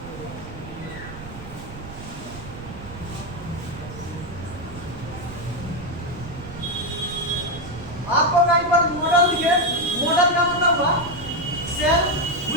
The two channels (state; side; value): noise; right; rumble, 13 dB below the sound